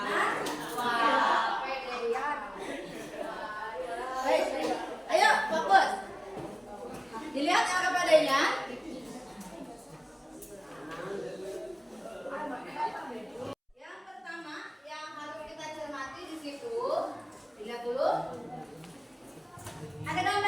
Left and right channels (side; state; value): both; identical; correlation 1.00